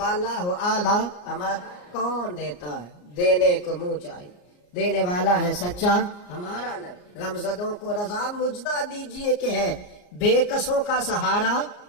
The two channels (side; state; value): right; late; 34 ms